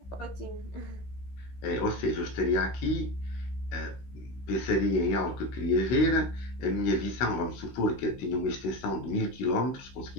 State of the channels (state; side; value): late; right; 16 ms